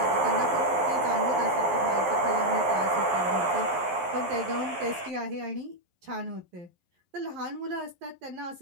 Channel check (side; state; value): left; late; 11 ms